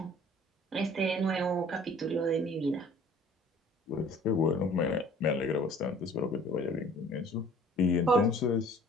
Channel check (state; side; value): normal; both; correlation 0.51